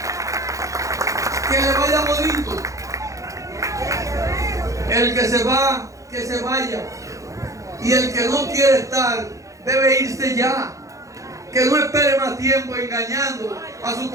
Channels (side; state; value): left; late; 0.15 ms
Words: que le vaya bonito. El que se va, que se vaya. Y el que no quiere estar, debe irse ya. Que no espere más tiempo engañando a sus